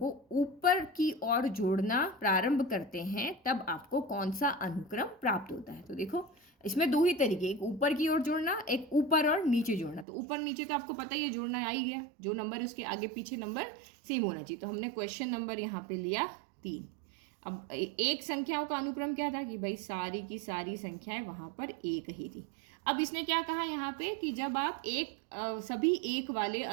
ऊपर की ओर जोड़ना प्रारंभ करते हैं तब आपको कौन सा अनुक्रम प्राप्त होता है। तो देखो इसमें दो ही तरीके, एक ऊपर की ओर जोड़ना, एक ऊपर और नीचे जोड़ना। तो ऊपर नीचे तो आपको पता ही है, जोड़ना आ ही गया, जो नंबर है उसके आगे पीछे नंबर सेम होना चाहिए। तो हमने क्वेश्चन नंबर यहाँ पे लिया 3। अब एक संख्याओं का अनुक्रम क्या था कि भाई सारी की सारी संख्याएं वहां पर एक ही थी। अब इसने क्या कहा यहाँ पे कि जब आप सभी एक वाले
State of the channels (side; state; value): left; drops out; at 10.1 s